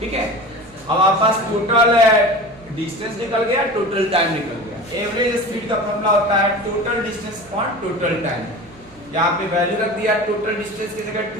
ठीक है, अब आपके पास टोटल डिस्टेंस निकल गया, टोटल टाइम निकल गया। एवरेज स्पीड का फॉर्मूला होता है total distance upon total time. यहाँ पे वैल्यू रख दिया, टोटल डिस्टेंस की जगह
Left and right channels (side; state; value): right; noise; hum, 26 dB below the sound